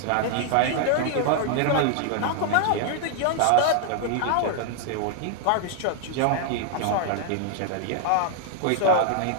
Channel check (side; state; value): both; different; correlation 0.00